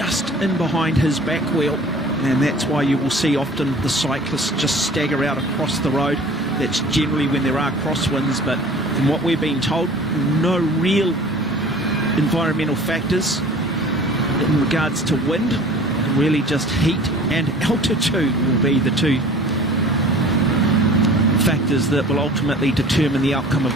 in behind his back wheel. And that's why you will see often the cyclists just stagger out across the road. That's generally when there are crosswinds, but from what we're being told, no real environmental factors in regards to wind. Really just heat and altitude will be the 2 factors that will ultimately determine the outcome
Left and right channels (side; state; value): both; normal; correlation 0.45